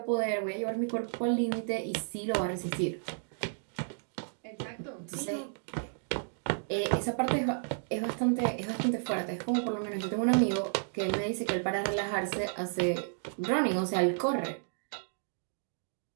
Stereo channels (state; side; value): silent; left; digital silence